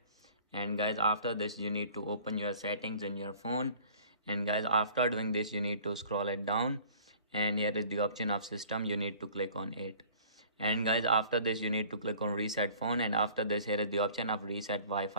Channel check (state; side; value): inverted; both; correlation -0.49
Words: and guys, after this you need to open your settings in your phone, and guys, after doing this you need to scroll it down, and here is the option of system. You need to click on it, and guys, after this you need to click on reset phone, and after this here is the option of reset